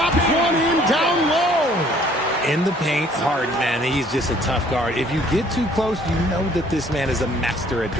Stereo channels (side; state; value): both; normal; correlation 0.58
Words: one in down low. In the paint, Harden, man, he's just a tough guard. If you get too close, you know that this man is a master at